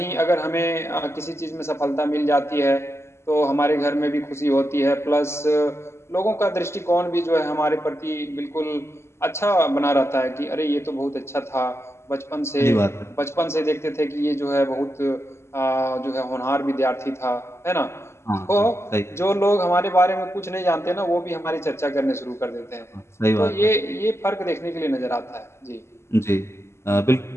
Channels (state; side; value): late; right; 0.13 ms